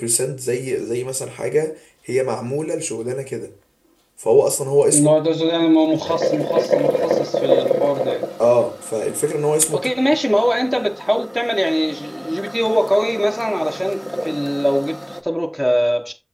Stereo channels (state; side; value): identical; both; correlation 1.00